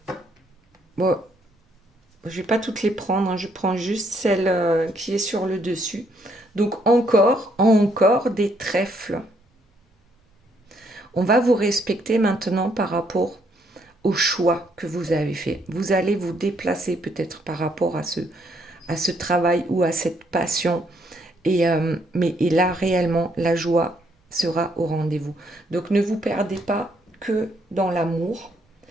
Bon, je vais pas toutes les prendre, hein. Je prends juste celle qui est sur le dessus. Donc encore des trèfles. On va vous respecter maintenant par rapport au choix que vous avez fait. Vous allez vous déplacer peut-être par rapport à ce travail ou à cette passion. Et là, réellement, la joie sera au rendez-vous. Donc ne vous perdez pas que dans l'amour,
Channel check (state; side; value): normal; both; correlation 0.71